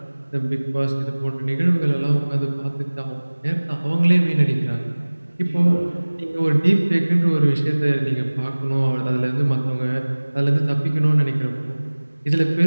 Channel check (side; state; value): both; inverted; correlation -1.00